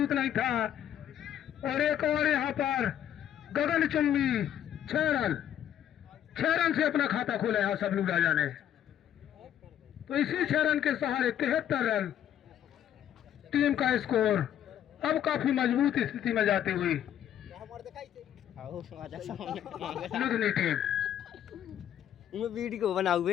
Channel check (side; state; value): right; quieter; 10.5 dB